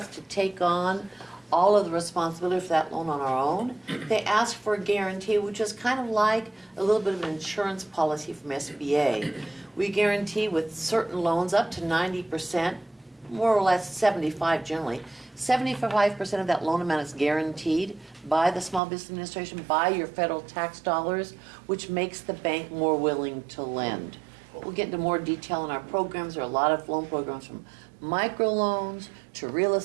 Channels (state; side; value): drops out; left; at 18.8 s